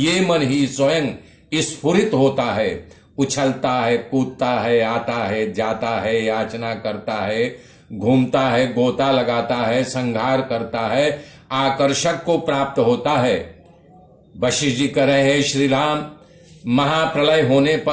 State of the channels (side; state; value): both; identical; correlation 1.00